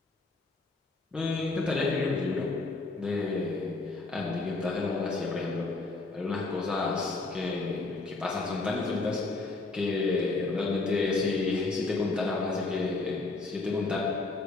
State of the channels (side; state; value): right; quieter; 3.4 dB